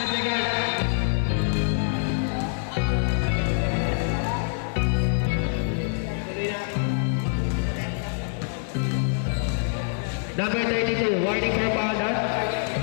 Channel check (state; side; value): silent; right; digital silence